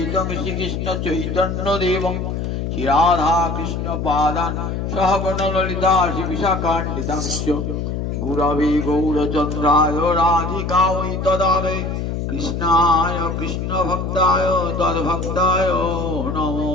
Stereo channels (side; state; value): left; noise; hum, 3 dB below the sound